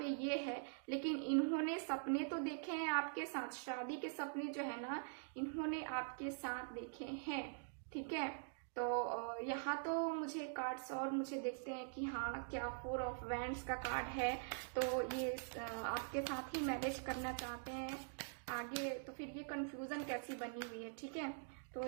ये है, लेकिन इन्होंने सपने तो देखे हैं आपके साथ, शादी के सपने जो है ना इन्होंने आपके साथ देखे हैं। ठीक है, तो यहाँ तो मुझे कार्ड्स और मुझे देखते हैं कि हाँ क्या 4 ऑफ वैंड्स का कार्ड है, तो ये आपके साथ ही मैरिज करना चाहते हैं आगे। तो फिर ये कंफ्यूजन कैसी बनी हुई है। ठीक है, तो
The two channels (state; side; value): silent; left; digital silence